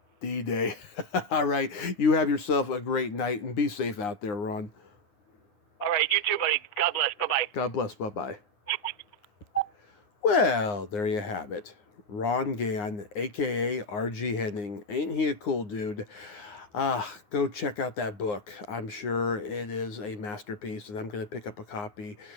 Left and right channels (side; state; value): right; late; 9.7 ms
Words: D-Day. All right. You have yourself a great night, and be safe out there, Ron. All right. You too, buddy. God bless. Bye-bye. God bless. Bye-bye. Well, there you have it. Ron Gann, a.k.a. R.G. Henning. Ain't he a cool dude? Go check out that book. I'm sure it is a masterpiece, and I'm going to pick up a copy